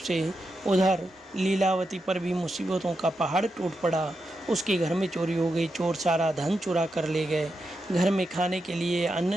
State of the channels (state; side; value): normal; both; correlation 0.86